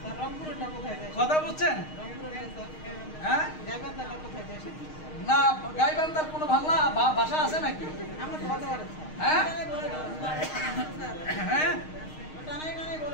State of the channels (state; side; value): late; right; 6.4 ms